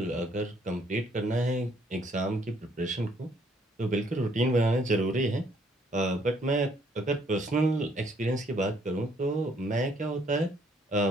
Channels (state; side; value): normal; both; correlation 0.66